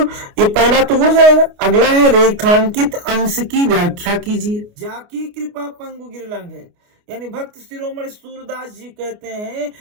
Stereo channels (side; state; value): left; late; 29 ms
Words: ये पहला तो हो जाएगा, अगला है रेखांकित अंश की व्याख्या कीजिए। जाकी कृपा पंगु गिरलांग है, यानी भक्त शिरोमणि सूरदास जी कहते हैं